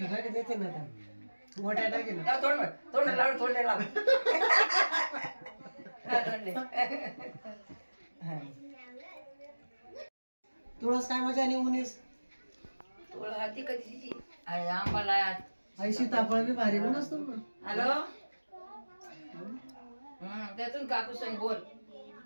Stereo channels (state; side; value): inverted; both; correlation -1.00